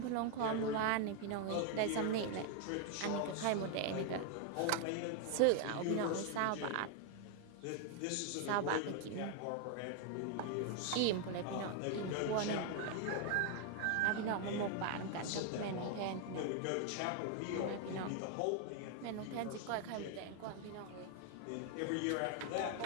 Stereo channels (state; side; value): different; both; correlation 0.01